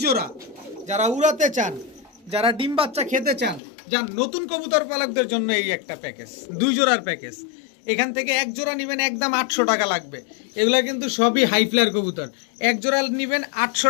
জোড়া। যারা উড়াতে চান, যারা ডিম বাচ্চা খেতে চান, যান নতুন কবুতর পালকদের জন্য এই একটা প্যাকেজ, 2 জোড়ার প্যাকেজ। এখান থেকে এক জোড়া নেবেন একদম 800 টাকা লাগবে। এগুলা কিন্তু সবই হাই ফ্লায়ার কবুতর। এক জোড়া নেবেন 800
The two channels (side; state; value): right; drops out; at 3.6 s